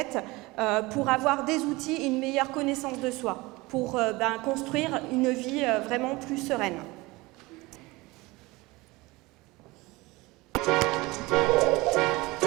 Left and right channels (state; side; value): quieter; left; 22.2 dB